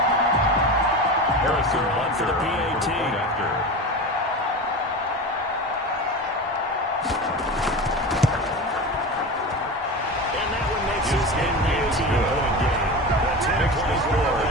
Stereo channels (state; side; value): normal; both; correlation 0.27